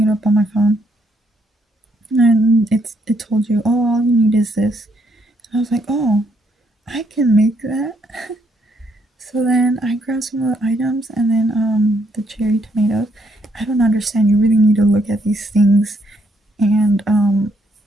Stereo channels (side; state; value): both; normal; correlation 0.73